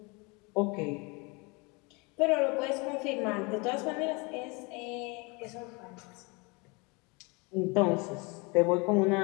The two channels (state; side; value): quieter; right; 28.8 dB